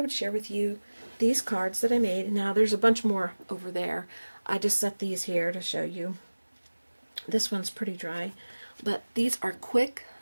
share with you these cards that I made. Now there's a bunch more over there. I just set these here to show you. This one's pretty dry, but these are quick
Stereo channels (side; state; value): both; inverted; correlation -1.00